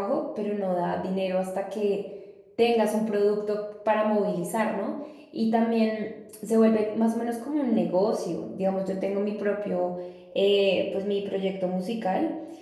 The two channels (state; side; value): identical; both; correlation 1.00